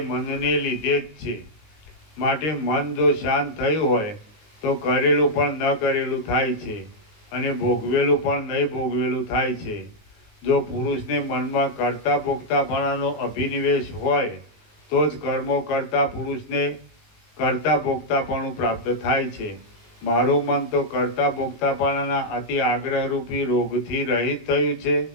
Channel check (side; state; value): right; late; 19 ms